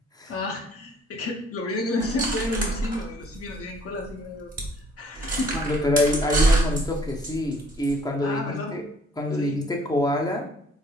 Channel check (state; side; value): normal; both; correlation 0.59